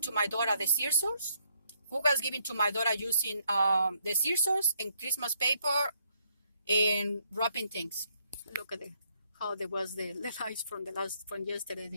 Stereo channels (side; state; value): both; inverted; correlation -0.72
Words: my daughter the scissors? who was given to my daughter using the scissors and Christmas paper and wrapping things. Look at how there was the lights from yesterday.